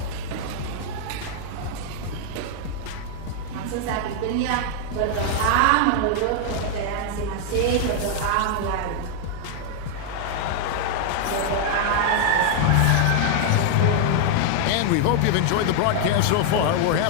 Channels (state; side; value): different; both; correlation 0.00